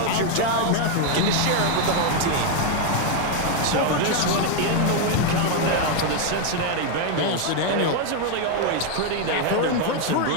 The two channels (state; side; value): different; both; correlation 0.01